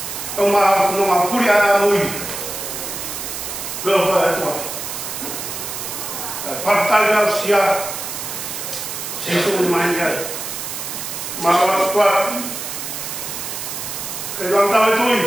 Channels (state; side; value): noise; right; hiss, 6 dB below the sound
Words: Uma puria muito. Eu vou tua. Falta já se a se isso mais já. Malas kuat, kedua tahu